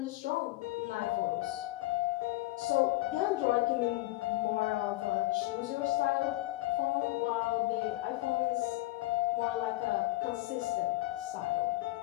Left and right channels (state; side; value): quieter; right; 18.4 dB